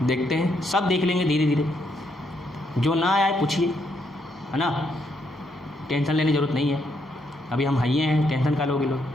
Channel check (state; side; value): normal; both; correlation 0.76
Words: देखते हैं, सब देख लेंगे धीरे धीरे। जो ना आए पूछिए, है ना, टेंशन लेने की ज़रूरत नहीं है। अभी हम हाइए हैं, टेंशन का लोगे लोग।